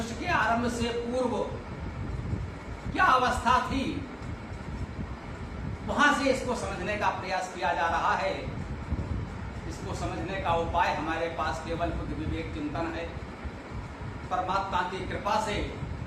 के आरंभ से पूर्व क्या अवस्था थी, वहां से इसको समझने का प्रयास किया जा रहा है। इसको समझने का उपाय हमारे पास केवल बुद्धि विवेक चिंतन है। परमात्मा की कृपा से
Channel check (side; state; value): both; identical; correlation 1.00